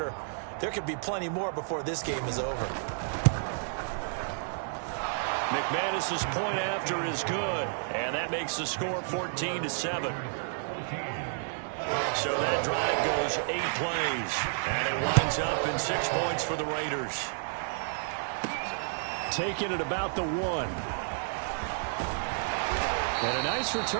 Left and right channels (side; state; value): left; silent; digital silence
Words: There could be plenty more before this game is over. McManus's point after is good, and that makes the score 14-7. So that drive goes 8 plays, and it winds up in 6 points for the Raiders. Taking it about the 1. And a nice